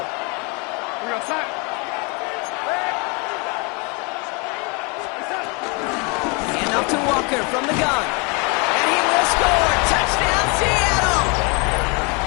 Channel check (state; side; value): quieter; right; 31.7 dB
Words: We're outside. Hand off to Walker from the gun. And he will score. Touchdown, Seattle!